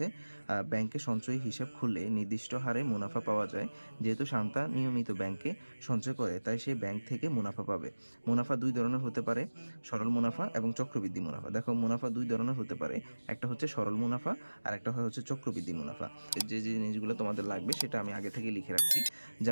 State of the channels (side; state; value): both; inverted; correlation -1.00